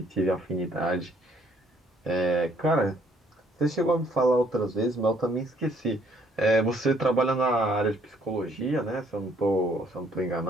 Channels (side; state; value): both; normal; correlation 0.65